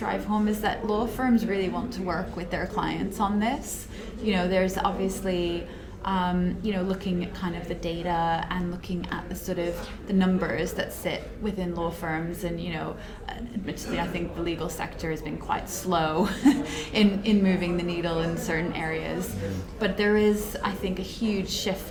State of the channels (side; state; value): both; identical; correlation 1.00